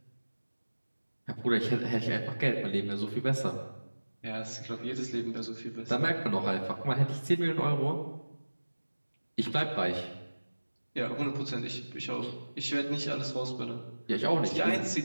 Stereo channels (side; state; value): both; inverted; correlation -1.00